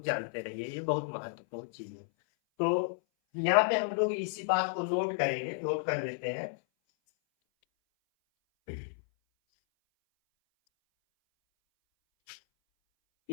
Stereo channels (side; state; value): right; silent; 56 dB below the other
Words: जानते रहिए, ये बहुत महत्वपूर्ण चीज है। तो यहाँ पे हम लोग इसी बात को नोट करेंगे, नोट कर लेते हैं।